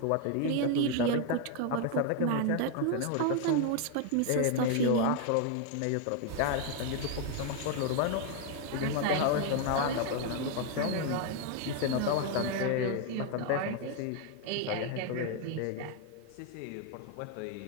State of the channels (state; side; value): different; both; correlation 0.01